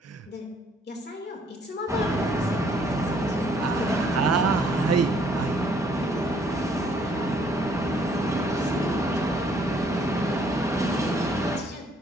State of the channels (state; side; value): normal; both; correlation 0.64